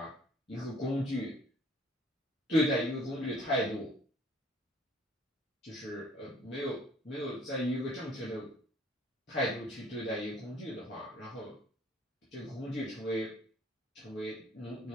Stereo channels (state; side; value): normal; both; correlation 0.57